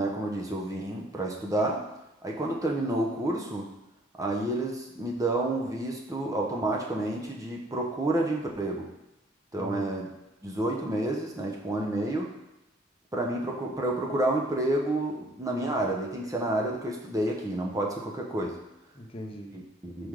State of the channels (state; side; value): normal; both; correlation 0.59